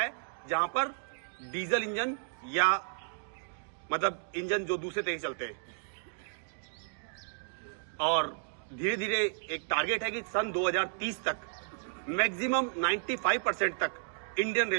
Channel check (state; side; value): silent; left; digital silence